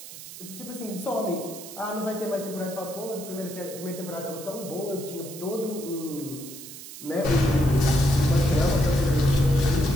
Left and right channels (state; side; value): noise; right; hiss, 13 dB below the sound